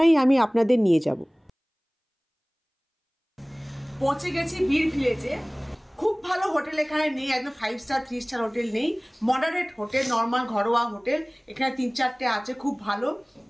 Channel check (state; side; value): identical; both; correlation 1.00